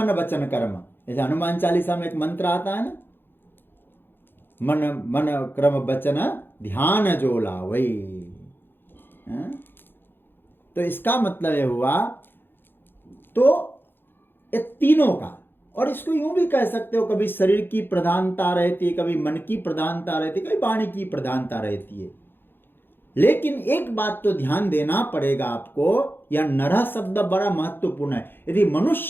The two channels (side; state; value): right; late; 0.10 ms